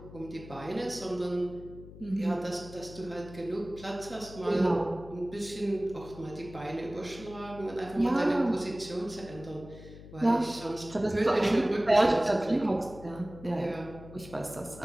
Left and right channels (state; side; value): noise; left; hum, 16 dB below the sound